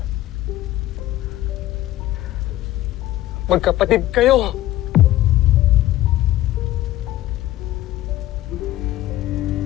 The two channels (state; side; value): quieter; right; 15.2 dB